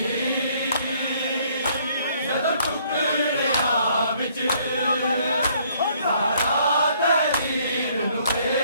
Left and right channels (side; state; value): both; inverted; correlation -0.64